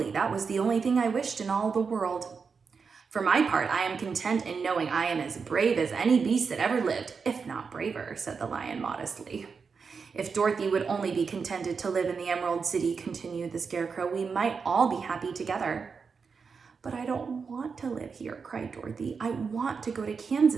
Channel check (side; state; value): left; quieter; 5.4 dB